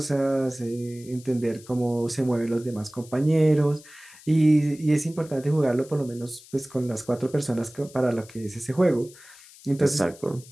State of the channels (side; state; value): left; noise; hiss, 22 dB below the sound